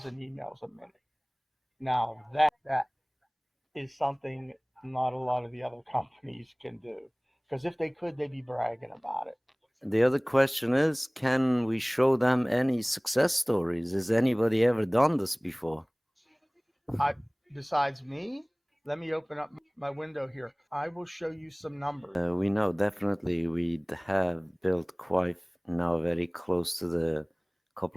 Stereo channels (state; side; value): identical; both; correlation 1.00